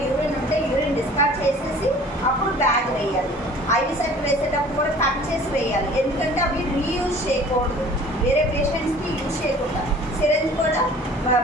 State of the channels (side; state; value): both; normal; correlation 0.48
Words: యూరిన్ ఉంటే యూరిన్ డిస్కార్డ్ చేసేసి అప్పుడు బ్యాగ్ వేయాలి. ఐవి సెట్ వేసేటప్పుడు కూడా కట్ చేసి వేయాలి, ఎందుకంటే అవి రీయూజ్ చేయకూడదు, వేరే పేషెంట్స్కి యూజ్ చేయకుండా. సిరెంజ్ కూడా